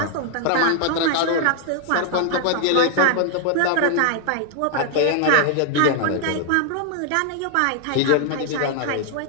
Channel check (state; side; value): different; both; correlation 0.00